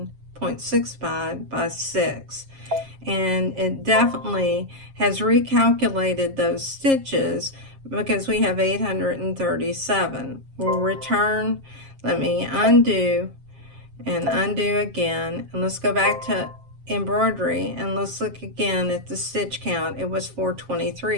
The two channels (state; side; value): late; left; 7.4 ms